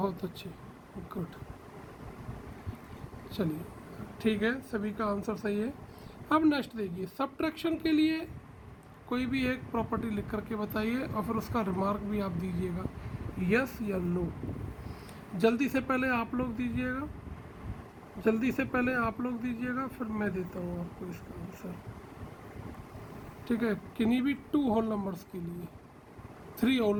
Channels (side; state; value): both; identical; correlation 1.00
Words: अच्छे, गुड। चलिए ठीक है, सभी का आंसर सही है। अब नेक्स्ट देखिए, सब्ट्रैक्शन के लिए कोई भी एक प्रॉपर्टी लिख करके बताइए और फिर उसका रिमार्क भी आप दीजिएगा, यस या नो। जल्दी से पहले आप लोग दीजिएगा, जल्दी से पहले आप लोग दीजिएगा, फिर मैं देता हूँ आपको इसका आंसर, ठीक है। किन्हीं भी 2 होल नंबर्स के लिए, 3 होल